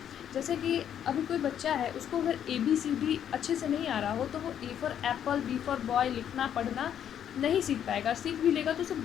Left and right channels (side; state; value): right; quieter; 9.5 dB